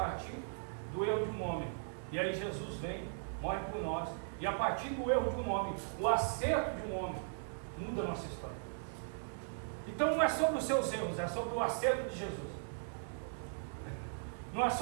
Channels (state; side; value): silent; left; digital silence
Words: do erro de um homem. E aí Jesus vem, morre por nós, e a partir do erro de um homem, o acerto de um homem, muda a nossa história. Então não é sobre os seus erros, é sobre o acerto de Jesus. Não é